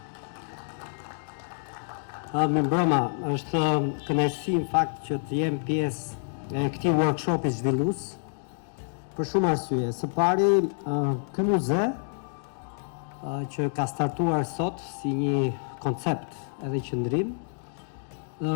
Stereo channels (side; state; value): right; silent; digital silence